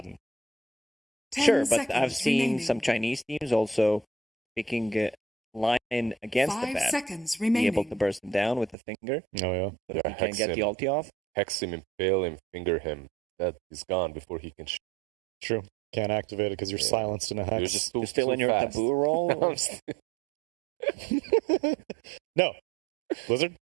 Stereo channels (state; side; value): drops out; left; at 8.8 s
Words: Sure, but I've seen some Chinese teams also picking Lion against the 5 Baden. seconds Be remaining. able to burst him down with the finger. Oh, yeah. But if he can get the ulti off. Hex him, impale him, finger him. That is gone before he can shoot. True. Can't activate it because you're silenced in a hex. You're still in your fast. taboo roll? No. Blizzard?